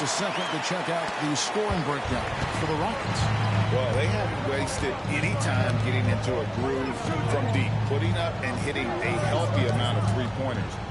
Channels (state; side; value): identical; both; correlation 1.00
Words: a second to check out the scoring breakdown for the Rockets. Well, they haven't wasted any time getting into a groove from deep, putting up and hitting a healthy amount of three-pointers